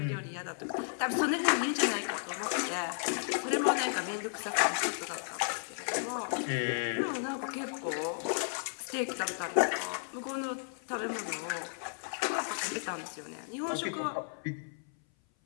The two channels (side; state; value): right; silent; 55 dB below the other